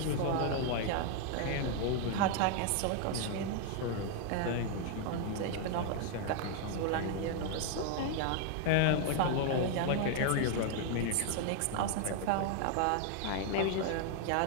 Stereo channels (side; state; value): both; different; correlation 0.00